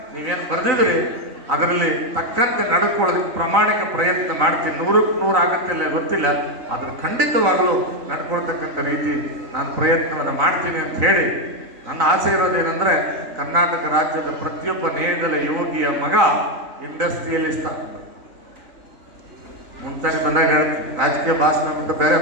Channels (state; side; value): late; left; 3.9 ms